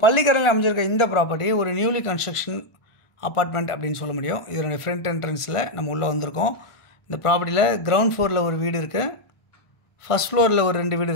பள்ளிக்கரணையில் அமைஞ்சிருக்க இந்த ப்ராப்பர்ட்டி ஒரு நியூலி கன்ஸ்ட்ரக்ஷன் அப்பார்ட்மெண்ட் அப்படின்னு சொல்ல முடியும். இதனுடைய ஃப்ரண்ட் என்ட்ரன்ஸில் நம்ம உள்ளே வந்திருக்கோம். இந்த ப்ராப்பர்ட்டியில் கிரவுண்ட் ஃப்ளோரில் ஒரு வீடு இருக்குது, ஃபஸ்ட் ஃப்ளோரில் ஒரு 2 வீடு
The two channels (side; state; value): right; late; 1.5 ms